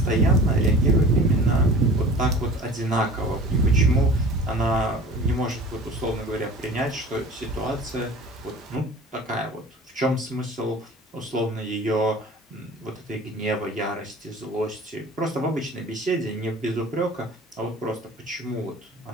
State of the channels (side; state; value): both; normal; correlation 0.42